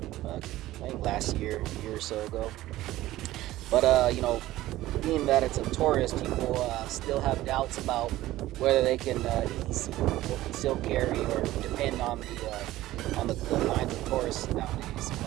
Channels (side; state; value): left; quieter; 15.8 dB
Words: I think last year, a year or so ago. But, being that it's a Taurus, people still have doubts about whether they can still carry or depend on the lines of Taurus nowadays.